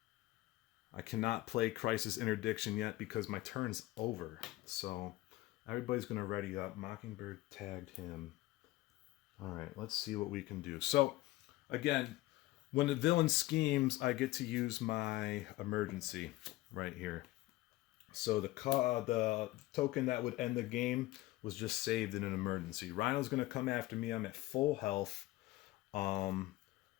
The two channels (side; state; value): right; quieter; 18.3 dB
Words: I cannot play Crisis Interdiction yet because my turn's over. So everybody's going to ready up. Mockingbird tagged him. All right, let's see what we can do. So again, when the villain schemes, I get to use my emergency right here. So the token that would end the game was just saved in an emergency. Rhino's going to come after me. I'm at full health. I